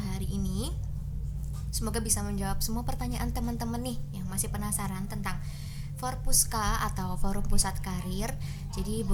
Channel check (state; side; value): identical; both; correlation 1.00